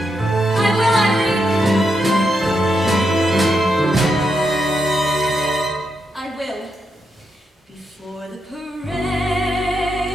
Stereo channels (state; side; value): normal; both; correlation 0.82